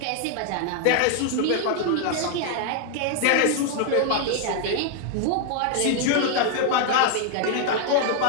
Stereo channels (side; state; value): both; different; correlation 0.00